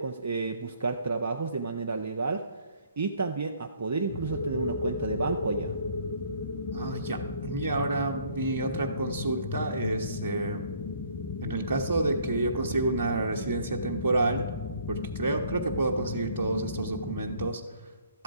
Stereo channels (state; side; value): inverted; both; correlation -0.60